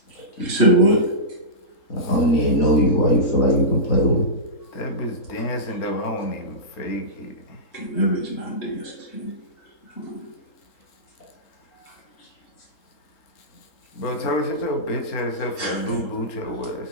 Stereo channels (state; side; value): late; right; 3.7 ms